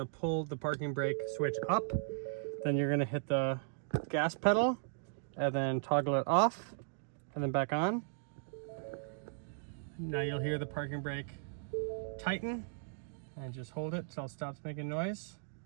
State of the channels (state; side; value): silent; left; digital silence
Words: to pull the parking brake switch up, then you're going to hit the gas pedal, and then toggle it off, and then back on. Now you'll hear the parking brake tighten, and just hold it until it stops making noise.